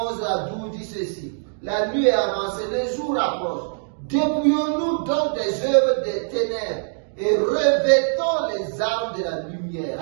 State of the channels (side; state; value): left; silent; digital silence